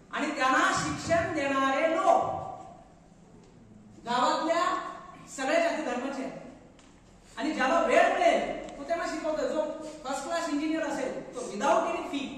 आणि त्यांना शिक्षण देणारे लोक गावातल्या सगळ्या जाती धर्माचे आहेत. आणि ज्याला वेळ मिळेल तो त्यांना शिकवतोय. जो फर्स्ट क्लास इंजिनियर असेल तो without any fee,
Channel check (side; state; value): both; identical; correlation 1.00